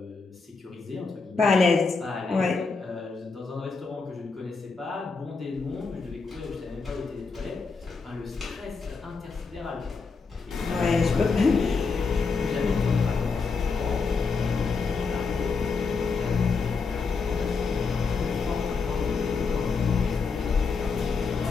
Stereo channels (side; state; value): right; quieter; 4.7 dB